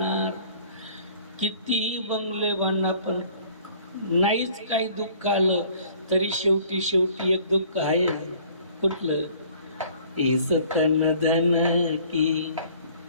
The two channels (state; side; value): inverted; both; correlation -0.54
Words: कितीही बंगले बांधणार, पण नाहीच काही दुःख आलं तरी शेवटी शेवटी एक दुःख आहे. कुठलं? इस तन धन की